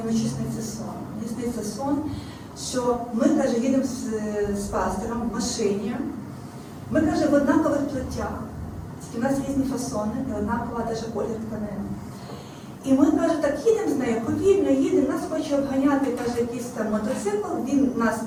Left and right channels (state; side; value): identical; both; correlation 1.00